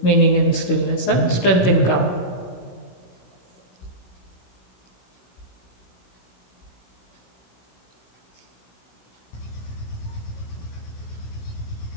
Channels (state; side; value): late; right; 16 ms